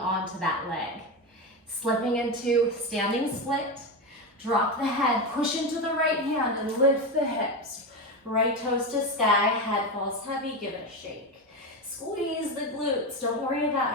to that leg. Slipping into standing split, drop the head, push into the right hand and lift the hips. Right toes to sky, head falls heavy, give it a shake. Squeeze the glutes, don't worry about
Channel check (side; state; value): both; normal; correlation 0.16